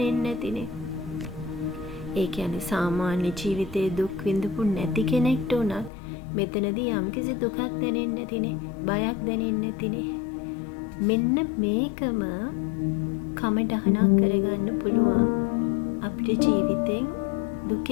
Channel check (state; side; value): drops out; right; at 5.9 s